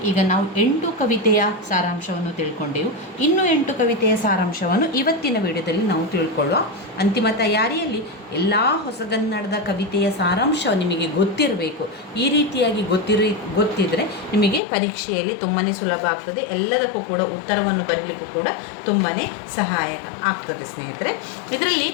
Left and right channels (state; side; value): drops out; right; at 14.6 s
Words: ಈಗ ನಾವು 8 ಕವಿತೆಯ ಸಾರಾಂಶವನ್ನು ತಿಳ್ಕೊಂಡೆವು. ಇನ್ನು 8 ಕವಿತೆಯ ಸಾರಾಂಶವನ್ನು ಇವತ್ತಿನ ವಿಡಿಯೋದಲ್ಲಿ ನಾವು ತಿಳ್ಕೊಳ್ಳುವ. ಅಂತಿಮ ತಯಾರಿಯಲ್ಲಿ ಎಲ್ಲ ಹೊಸಗನ್ನಡದ ಕವಿತೆಯ ಸಾರಾಂಶ ನಿಮಗೆ ಗೊತ್ತಿರಬೇಕು. ಈ ರೀತಿಯಾಗಿ ಗೊತ್ತಿದ್ದರೆ ನಿಮಗೆ ಪರೀಕ್ಷೆಯಲ್ಲಿ ತುಂಬಾ ಸುಲಭ ಆಗ್ತದೆ. ಎಲ್ಲದಕ್ಕೂ ಕೂಡ ಉತ್ತರವನ್ನು ಬರಲಿಕ್ಕೂ ಕೂಡ ತುಂಬಾ ಸಹಾಯಕ ಆಗ್ತದೆ ಸ್ನೇಹಿತರೆ. ಇದರಲ್ಲಿ